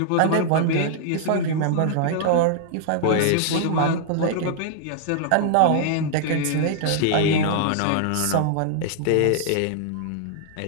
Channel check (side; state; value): both; different; correlation -0.01